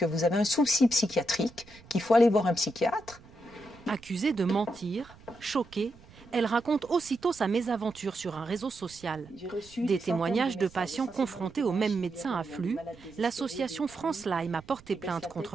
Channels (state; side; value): noise; right; rumble, 23 dB below the sound